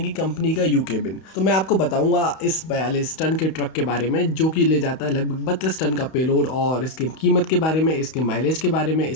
कि कंपनी का यू केबिन। तो मैं आपको बताऊंगा इस 42 टन के ट्रक के बारे में जो कि ले जाता है लगभग 32 टन का पेलोड, और इसकी कीमत के बारे में, इसके माइलेज के बारे में,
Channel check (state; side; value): late; right; 31 ms